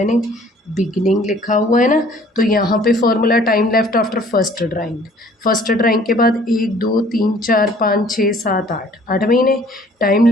बिगनिंग लिखा हुआ है ना। तो यहाँ पे formula time left after first drawing, first drawing के बाद 1 2 3 4 5 6 7 8, 8 महीने। Time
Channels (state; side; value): normal; both; correlation 0.55